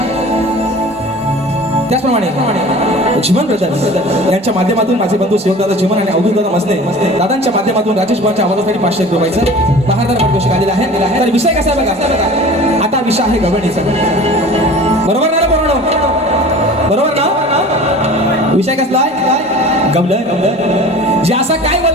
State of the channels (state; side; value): normal; both; correlation 0.41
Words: त्याचप्रमाणे जीवन ब्रदर्स यांच्या माध्यमातून माझे बंधू शिवदादा जीवन आणि अवधूत दादा मसने दादांच्या माध्यमातून राजेश भावाच्या आवाजासाठी 500 रुपयाचं बहादर पाठ घोषित आलेला आहे तर विषय कसा आहे बघा आता विषय आहे गवळणीचा बरोबर ना बरोबर ना विषय कसला आहे गवळण जे असा काय